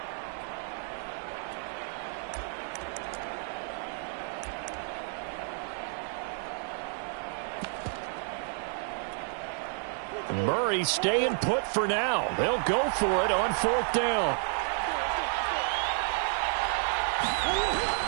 Murray staying put for now. They'll go for it on 4th down.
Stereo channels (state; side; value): silent; left; 57 dB below the other